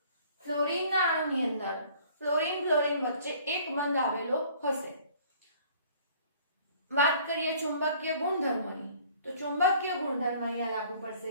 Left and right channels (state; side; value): inverted; both; correlation -0.54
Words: ફ્લોરીનના અણુની અંદર ફ્લોરીન વચ્ચે એક બંધ આવેલો હશે. વાત કરીએ ચુંબકીય ગુણધર્મોની તો ચુંબકીય ગુણધર્મ અહીંયા લાગુ